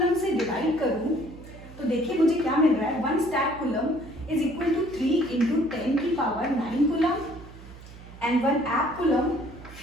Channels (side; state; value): right; noise; hum, 17 dB below the sound